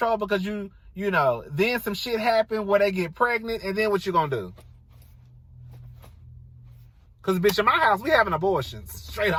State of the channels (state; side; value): identical; both; correlation 1.00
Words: because you know, then some shit happen where they get pregnant, and then what you going to do? Because, bitch, in my house, we having abortions. Straight